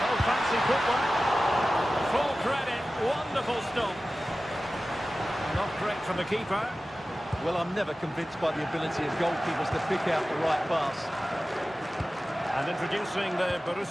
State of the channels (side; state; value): both; normal; correlation 0.96